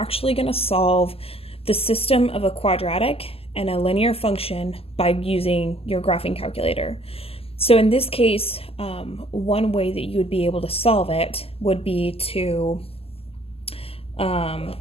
going to solve the system of a quadratic and a linear function by using your graphing calculator. So in this case, one way that you would be able to solve it would be to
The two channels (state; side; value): late; right; 0.28 ms